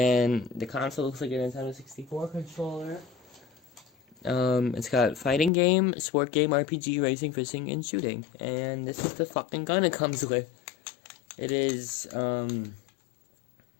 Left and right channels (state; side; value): drops out; right; at 5.5 s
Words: the console looks like a Nintendo 64 controller. It's got fighting game, sport game, RPG, racing, fishing, and shooting. And this is the fucking gun it comes with. It is, an